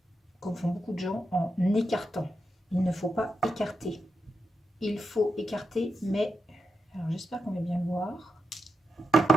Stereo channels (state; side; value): normal; both; correlation 0.86